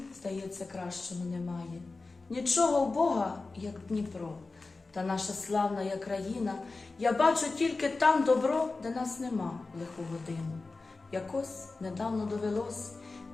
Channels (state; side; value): quieter; right; 3.7 dB